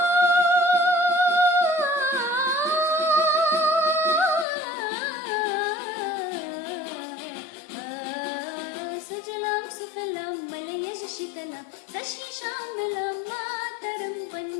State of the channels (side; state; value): right; drops out; at 4.5 s